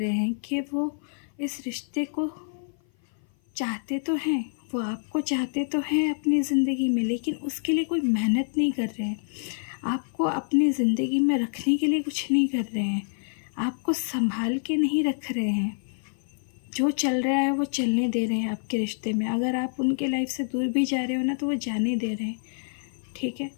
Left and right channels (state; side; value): silent; right; 56 dB below the other